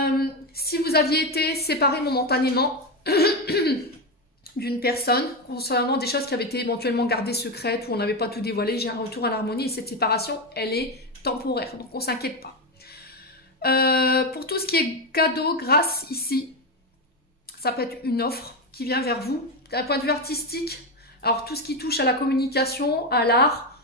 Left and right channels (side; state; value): both; normal; correlation 0.12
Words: Si vous aviez été séparé momentanément d'une personne concernant des choses qui avaient été éventuellement gardées secrètes ou on n'avait pas tout dévoilé, j'ai un retour à l'harmonie et cette séparation, elle est temporaire, donc on ne s'inquiète pas. Pour tout ce qui est cadeau, grâce ici, ça peut être une offre qui vient vers vous d'un point de vue artistique. Alors tout ce qui touche à la communication, à l'art,